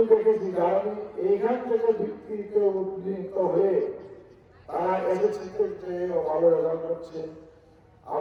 দেখেছি কারণ এইখান থেকে ভিত্তিতে উন্নীত হয়ে তারা এসএসসিতে চেয়েও ভালো রেজাল্ট করছে,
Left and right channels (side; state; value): both; identical; correlation 1.00